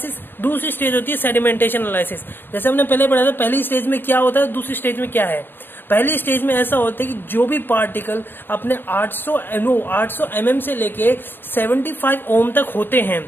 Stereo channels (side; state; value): right; late; 0.096 ms